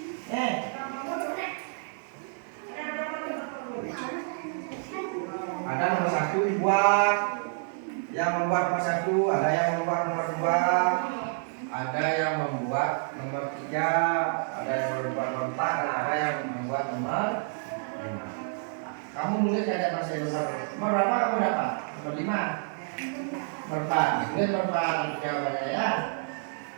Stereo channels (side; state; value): left; silent; 59 dB below the other